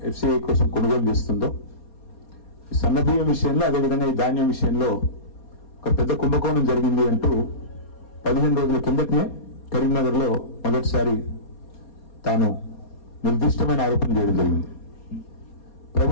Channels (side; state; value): right; late; 4.3 ms